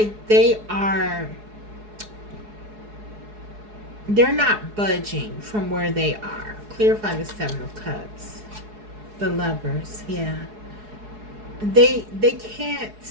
they're not budging from where they are. Clarify the Seven of Cups. The Lovers, yeah. They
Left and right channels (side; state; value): left; late; 4.7 ms